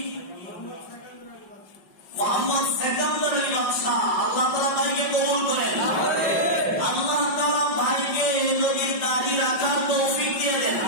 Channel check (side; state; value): right; late; 5.3 ms